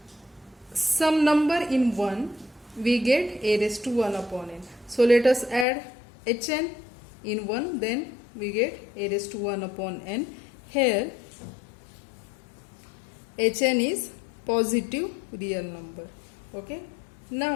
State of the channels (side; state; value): right; drops out; at 5.7 s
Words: some number in 1, we get A raised to 1 upon n. So, let us add Hn in 1, then we get A raised to 1 upon n. Here, Hn is positive real number. Okay.